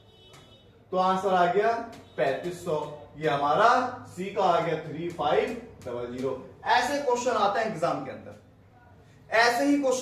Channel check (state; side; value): identical; both; correlation 1.00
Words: तो आंसर आ गया 3500। ये हमारा C का आ गया 3500। ऐसे क्वेश्चन आते हैं एग्जाम के अंदर, ऐसे ही